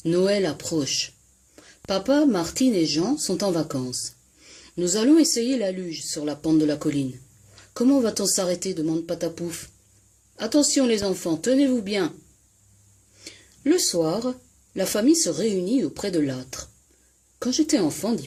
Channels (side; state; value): both; identical; correlation 1.00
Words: Noël approche. Papa, Martine et Jean sont en vacances. Nous allons essayer la luge sur la pente de la colline. Comment va-t-on s'arrêter demande Patapouf. Attention les enfants, tenez-vous bien. Le soir, la famille se réunit auprès de l'âtre. Quand j'étais enfant, dit